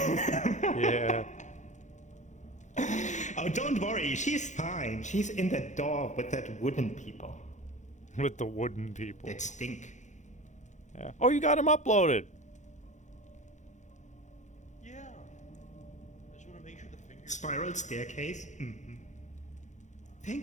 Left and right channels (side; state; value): right; late; 0.35 ms